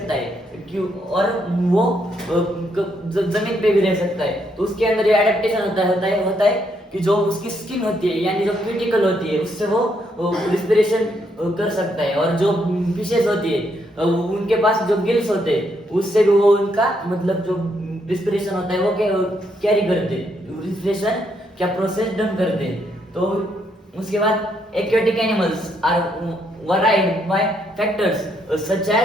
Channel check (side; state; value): both; normal; correlation 0.75